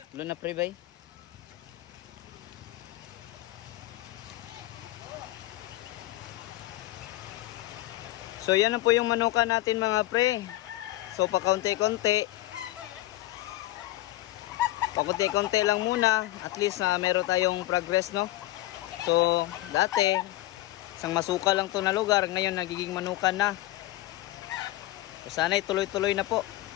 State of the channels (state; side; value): quieter; right; 17.0 dB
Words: Ulan na pre bay. So yan na po yung manukan natin mga pre. So pakunti-kunti. Pakunti-kunti lang muna. At least na meron tayong progress, no? So dati isang masuka lang to na lugar. Ngayon nagiging manukan na. So sana tuloy-tuloy na po.